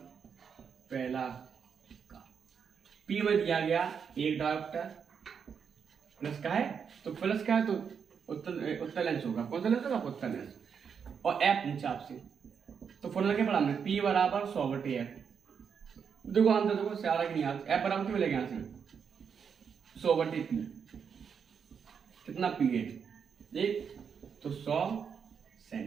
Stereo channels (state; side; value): quieter; left; 6.8 dB